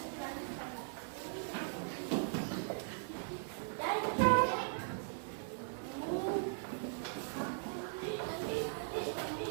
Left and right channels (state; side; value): silent; left; digital silence